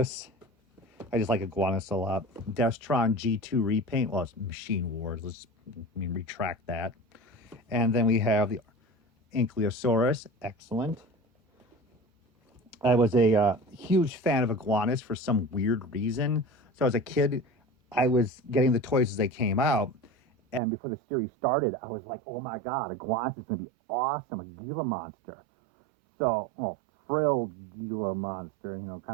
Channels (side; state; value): left; drops out; at 20.6 s